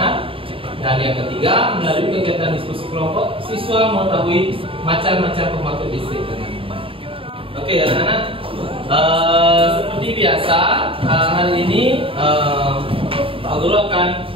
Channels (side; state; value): left; late; 0.26 ms